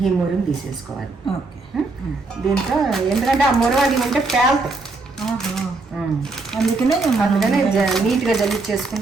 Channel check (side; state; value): left; quieter; 3.5 dB